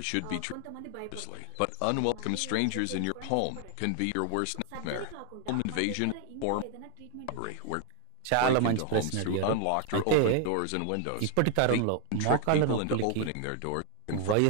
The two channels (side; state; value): both; different; correlation 0.00